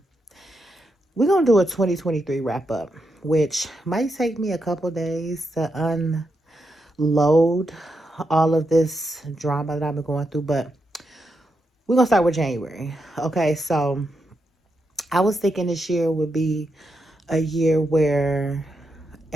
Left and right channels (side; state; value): both; normal; correlation 0.83